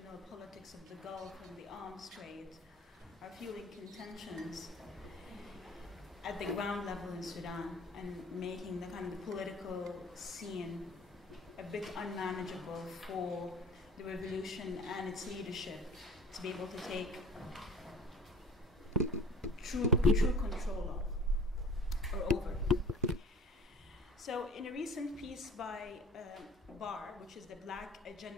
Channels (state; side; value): normal; both; correlation 0.43